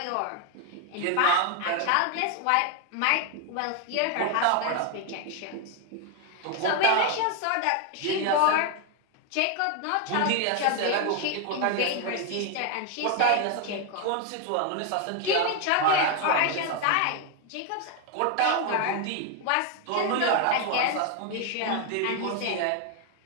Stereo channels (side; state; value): both; different; correlation 0.01